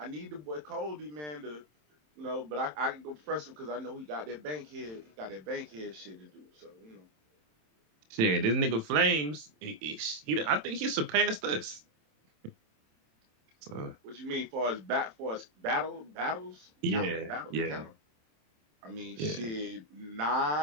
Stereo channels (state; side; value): late; left; 27 ms